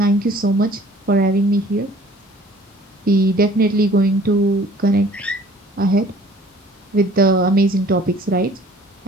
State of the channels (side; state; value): both; normal; correlation 0.52